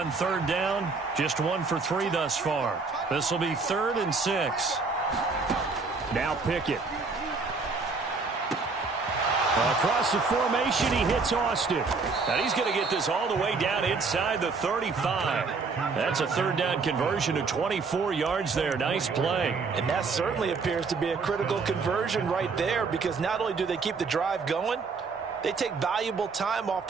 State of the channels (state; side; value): quieter; left; 4.5 dB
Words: third down, just 1 for 3 thus far. This will be 3rd and 6. Now Pickett. Across the formation, he hits Austin. And he's going to get this all the way down inside the 35. That's a 3rd down conversion of 24 yards there. Nice play. And that certainly appears to be a critical conversion right there, because not only do they keep the drive going, they take valuable time off